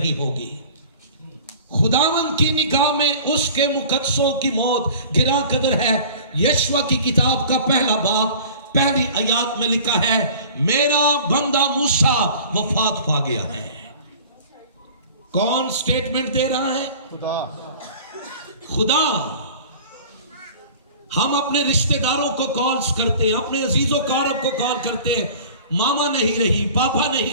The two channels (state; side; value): inverted; both; correlation -0.44